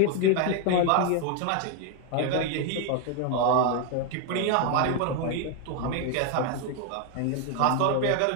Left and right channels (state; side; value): different; both; correlation 0.00